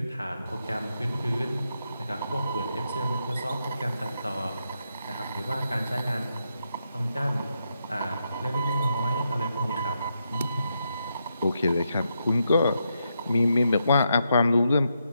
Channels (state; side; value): inverted; both; correlation -0.82